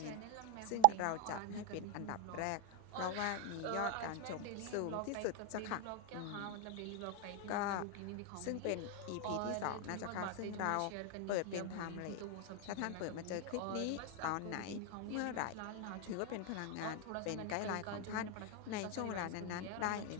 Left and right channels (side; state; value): both; different; correlation 0.00